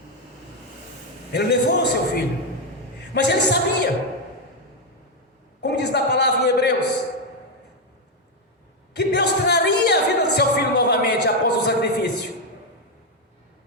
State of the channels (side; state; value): both; normal; correlation 0.04